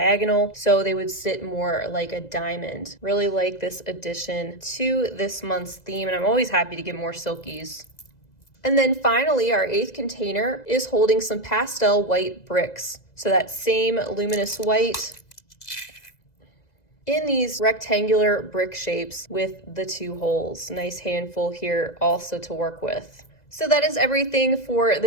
so they would sit more like a diamond. Really like this addition to this month's theme, and I'm always happy to get more silkies. And then finally, our 8th container is holding some pastel white bricks. So that same luminous white in these rectangular brick shapes with the 2 holes. Nice handful here also to work with. So that is everything for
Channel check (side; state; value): right; late; 2.0 ms